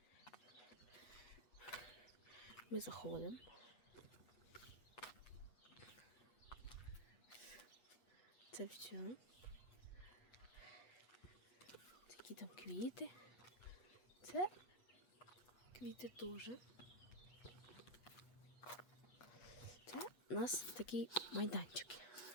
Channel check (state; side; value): late; right; 8.2 ms